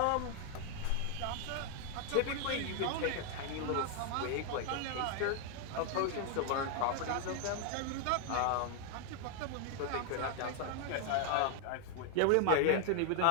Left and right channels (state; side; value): different; both; correlation 0.00